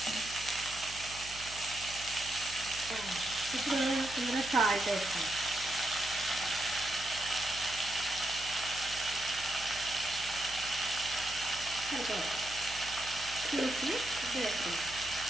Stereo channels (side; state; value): right; noise; hum, 15 dB below the sound